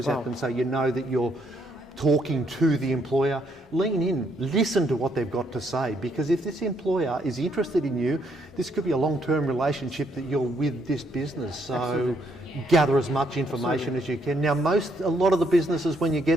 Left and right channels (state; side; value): normal; both; correlation 0.72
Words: at them so you know that you're talking to the employer. Lean in, listen to what they've got to say, because if this employer is interested in you, this could be a long-term relationship that you're with this business. So Absolutely. Gather as much information as you can. Now a lot of the businesses, when you